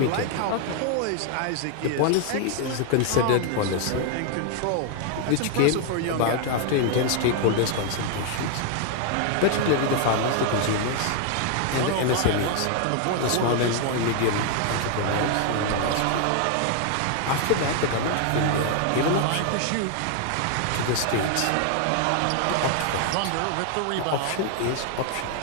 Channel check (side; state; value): both; different; correlation 0.00